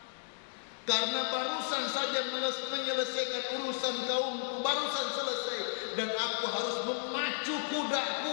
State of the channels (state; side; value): silent; right; digital silence